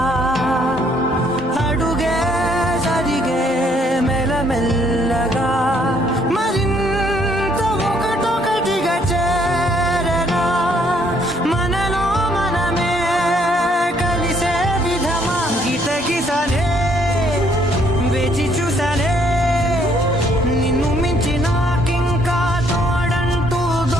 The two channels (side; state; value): both; normal; correlation 0.66